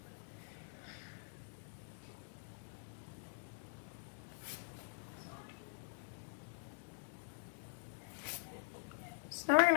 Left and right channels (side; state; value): right; silent; digital silence